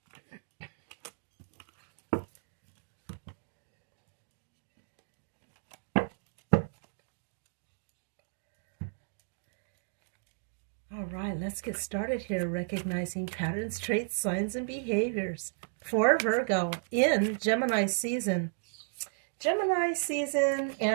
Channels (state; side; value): silent; left; digital silence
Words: right, let's get started here, recognizing patterns, traits, signs, and behaviors. For Virgo, in Gemini season. Gemini season